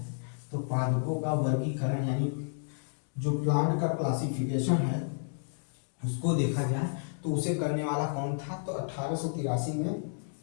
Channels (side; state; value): right; silent; digital silence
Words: तो पादपों का वर्गीकरण यानी जो प्लांट का क्लासिफिकेशन है उसको देखा जाए तो उसे करने वाला कौन था, तो 1883 में